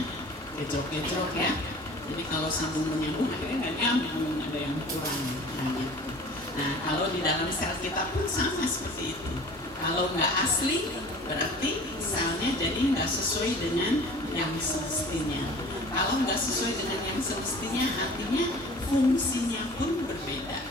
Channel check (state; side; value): normal; both; correlation 0.44